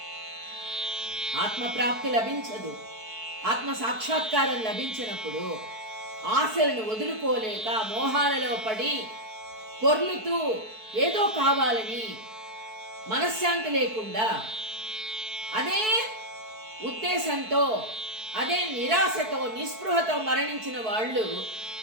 ఆత్మప్రాప్తి లభించదు. ఆత్మ సాక్షాత్కారం లభించినప్పుడు ఆశలను వదులుకోలేక మోహాలలో పడి పొర్లుతూ ఏదో కావాలని మనశ్శాంతి లేకుండా అదే ఉద్దేశంతో, అదే నిరాశతో, నిస్పృహతో మరణించిన వాళ్ళు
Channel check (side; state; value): left; late; 4.6 ms